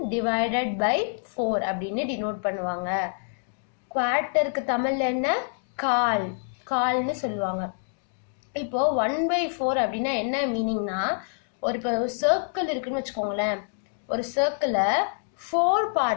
divided by 4 அப்படின்னு டினோட் பண்ணுவாங்க. குவார்ட்டருக்கு தமிழ்ல என்ன கால்னு சொல்லுவாங்க. இப்போ 1/4 அப்படின்னா என்ன மீனிங்னா இப்போ சர்க்கிள் இருக்குன்னு வச்சுக்கோங்களேன். ஒரு சர்க்கிளை 4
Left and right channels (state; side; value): silent; right; digital silence